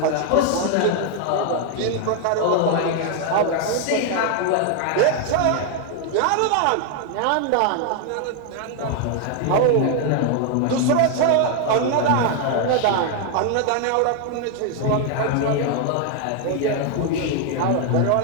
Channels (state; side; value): different; both; correlation 0.00